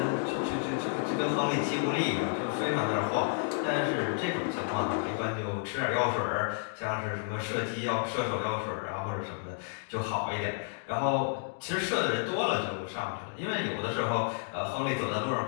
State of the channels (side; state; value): right; silent; digital silence